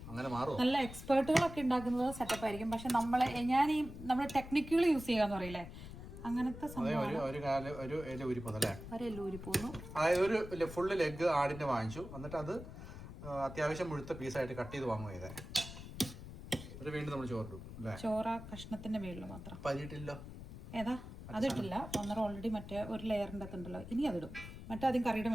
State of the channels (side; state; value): left; noise; rumble, 12 dB below the sound